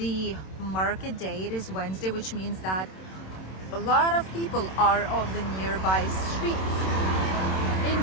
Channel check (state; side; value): late; right; 27 ms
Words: market day. It is Wednesday, which means that a lot of people are on the nearby streets